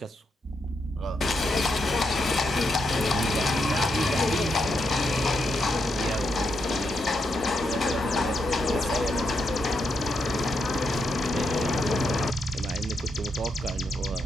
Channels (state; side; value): normal; both; correlation 0.81